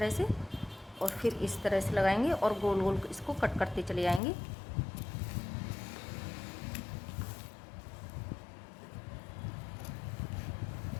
से, और फिर इस तरह से लगाएंगे और गोल गोल इसको कट करते चले जाएंगे।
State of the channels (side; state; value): right; drops out; at 4.2 s